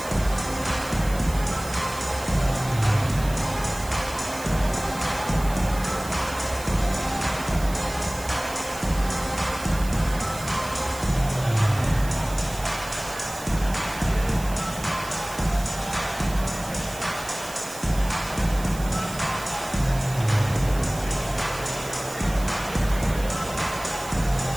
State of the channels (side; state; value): right; noise; hiss, 14 dB below the sound